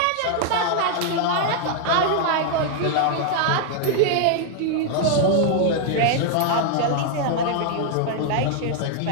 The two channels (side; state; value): both; different; correlation 0.00